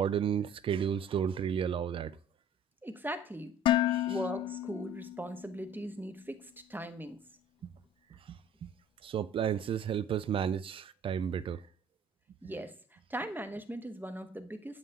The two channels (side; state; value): both; normal; correlation 0.49